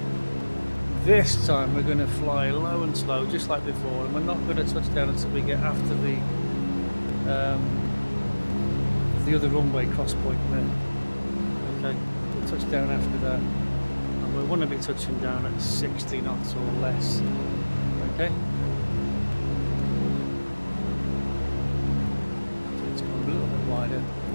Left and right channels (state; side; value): inverted; both; correlation -1.00